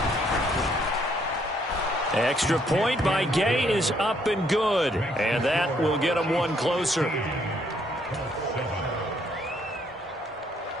Extra point by Gay is up and good, and that will get them one closer.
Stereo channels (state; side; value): normal; both; correlation 0.69